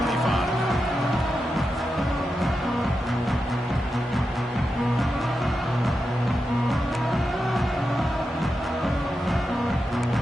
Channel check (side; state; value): both; normal; correlation 0.89